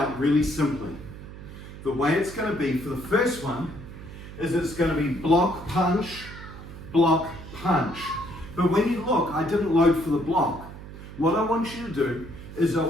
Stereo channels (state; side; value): noise; right; hum, 13 dB below the sound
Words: really simply. The way it's going to be for the first one is it's going to be block, punch, block, punch. But when you look, I didn't load for the block. What I want you to do is I